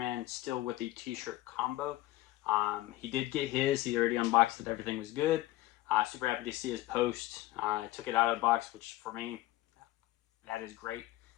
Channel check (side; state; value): right; quieter; 17.0 dB